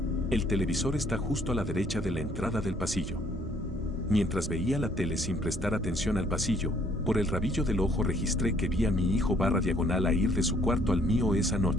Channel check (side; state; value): both; normal; correlation 0.63